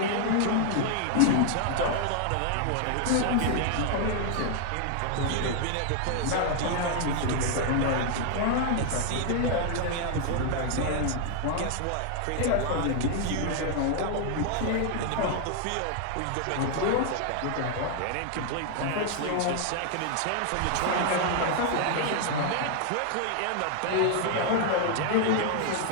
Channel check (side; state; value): both; different; correlation 0.00